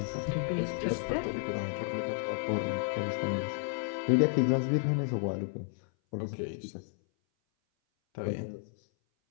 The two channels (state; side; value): silent; right; 56 dB below the other